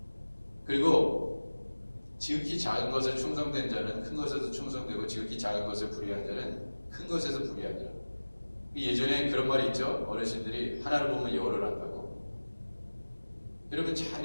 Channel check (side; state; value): both; inverted; correlation -1.00